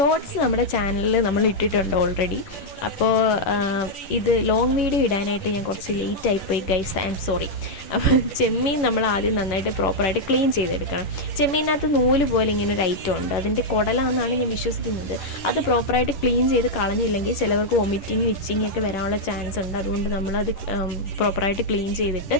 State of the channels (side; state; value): right; late; 10 ms